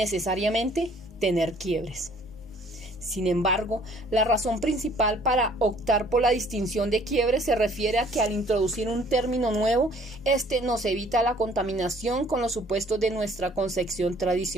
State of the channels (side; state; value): both; normal; correlation 0.58